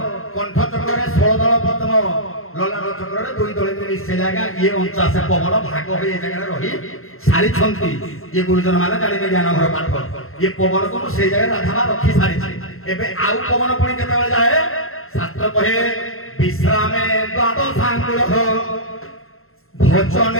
कंठ चक्रे 16 दल पद्म ललाट चक्रे 2 दल मिसे जाएगा ये 49 पवन भाग हो ये जगह रही सारी छंती ये गुरुजन माने जानिबे ज्ञान घर पाठ ये पवन को से जगह राधा रखी सारी एबे आउ पवन पणी केते बेले जाए शास्त्र कहे विश्रामे द्वादशांकुल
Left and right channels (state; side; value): late; right; 0.61 ms